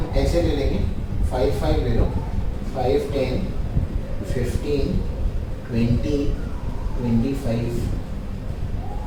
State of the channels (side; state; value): both; identical; correlation 1.00